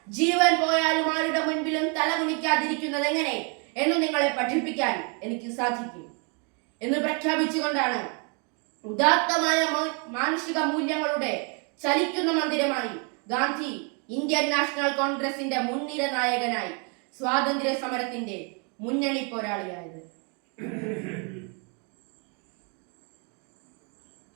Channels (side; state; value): left; quieter; 36.3 dB